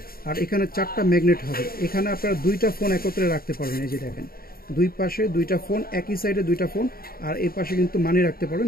আর এখানে 4টা ম্যাগনেট হবে। এখানে আপনারা দুইটা ফোন একত্রে রাখতে পারবেন। এই যে দেখেন, দুই পাশে দুইটা ফোন, একই সাইডে দুইটা ফোন, আর এই পাশে কিন্তু মানি রাখতে পারবেন,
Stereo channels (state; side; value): late; right; 0.43 ms